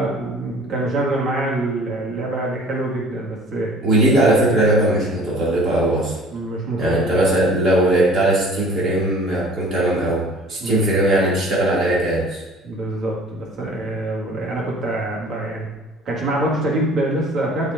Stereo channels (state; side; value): normal; both; correlation 0.49